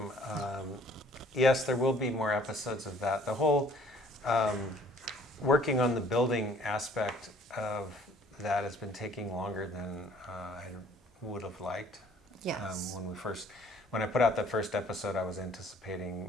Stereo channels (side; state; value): both; normal; correlation 0.57